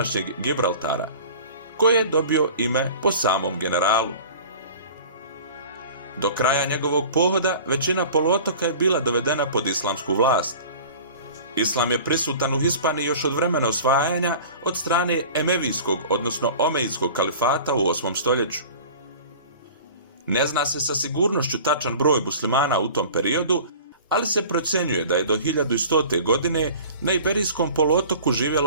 Gibraltara, koje je dobio ime po samom generalu. Do kraja njegovog pohoda većina poluotoka je bila dovedena pod islamsku vlast. Islam je prisutan u Hispaniji još od vremena osvajanja od strane Emevijskog, odnosno Omejidskog kalifata u 8. stoljeću. Ne zna se sa sigurnošću tačan broj muslimana u tom periodu, ali se procjenjuje da je do 1100. godine na Iberijskom poluotoku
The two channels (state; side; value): inverted; both; correlation -0.41